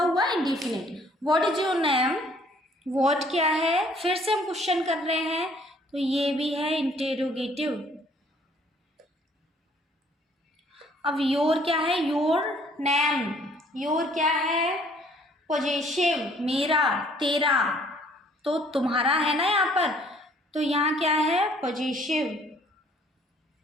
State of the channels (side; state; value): both; normal; correlation 0.60